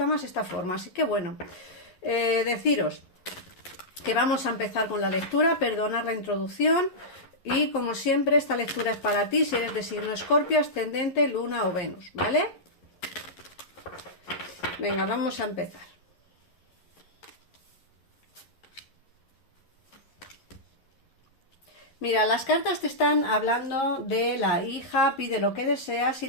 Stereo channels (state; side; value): late; right; 11 ms